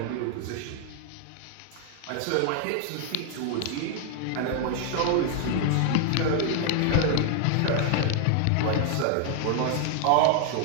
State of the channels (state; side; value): different; both; correlation 0.00